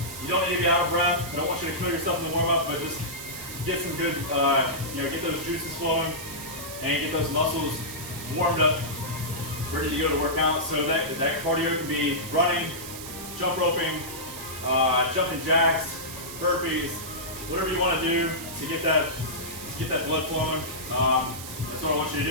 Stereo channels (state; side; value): noise; right; hiss, 11 dB below the sound